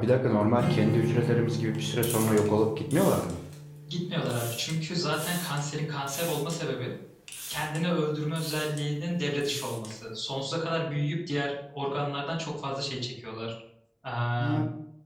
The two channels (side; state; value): both; identical; correlation 1.00